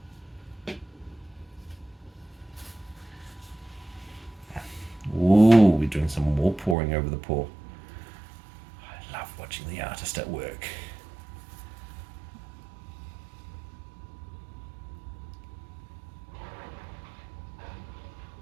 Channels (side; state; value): left; drops out; at 6.8 s